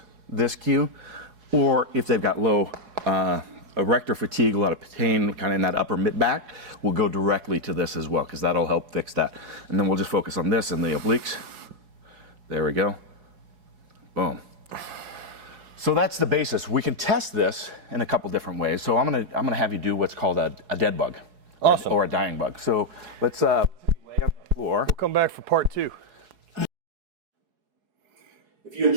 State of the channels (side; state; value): left; late; 4.7 ms